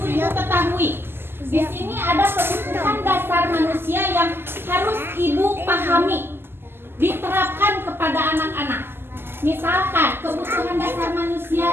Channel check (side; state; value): left; late; 0.11 ms